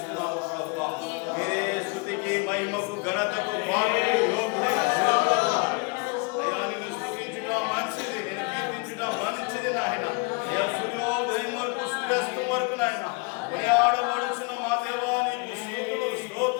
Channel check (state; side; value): quieter; right; 30.6 dB